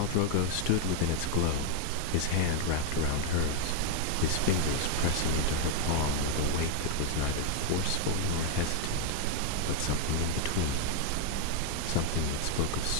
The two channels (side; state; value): both; different; correlation 0.00